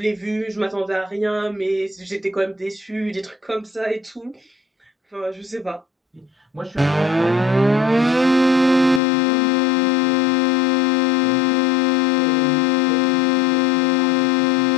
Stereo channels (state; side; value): drops out; right; at 9.0 s